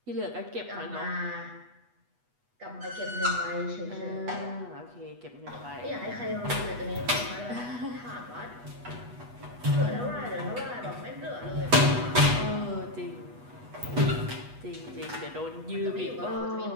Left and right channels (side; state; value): left; late; 8.2 ms